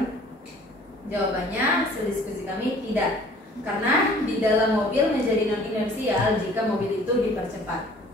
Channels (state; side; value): normal; both; correlation 0.52